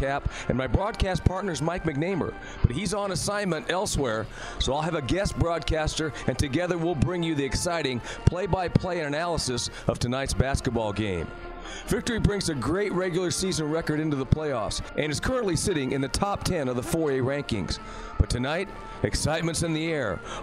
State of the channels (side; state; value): both; identical; correlation 1.00